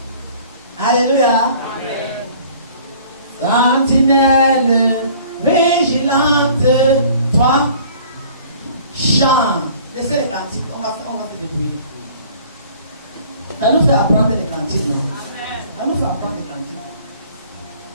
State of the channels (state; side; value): inverted; both; correlation -0.51